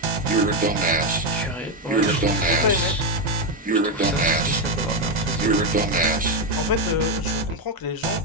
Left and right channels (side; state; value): both; normal; correlation 0.07